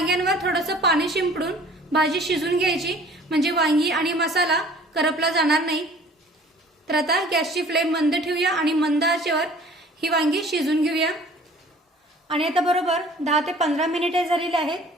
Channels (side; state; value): both; normal; correlation 0.50